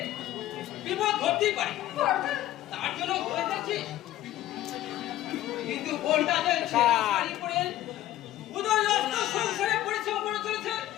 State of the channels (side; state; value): right; quieter; 14.1 dB